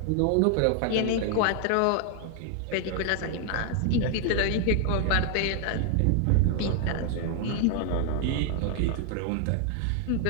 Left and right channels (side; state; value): both; different; correlation 0.00